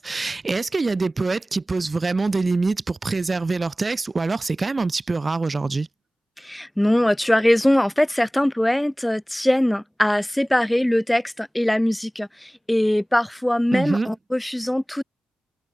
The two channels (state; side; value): normal; both; correlation 0.98